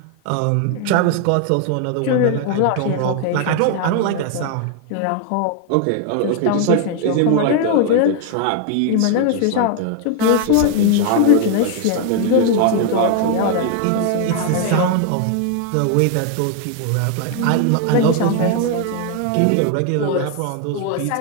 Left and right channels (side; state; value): both; different; correlation 0.00